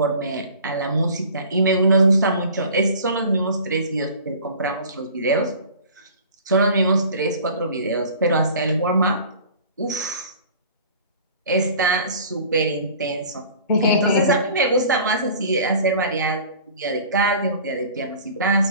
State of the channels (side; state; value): both; inverted; correlation -0.45